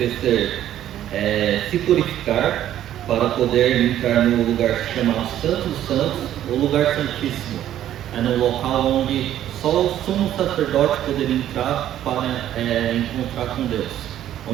se purificar para poder entrar no lugar chamado Santo dos Santos, o lugar santíssimo. É no local onde só o sumo sacerdote poderia entrar para encontrar com Deus,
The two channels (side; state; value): left; quieter; 11.8 dB